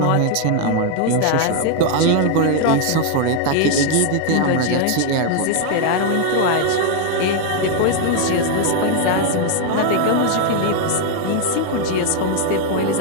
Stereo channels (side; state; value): both; different; correlation 0.00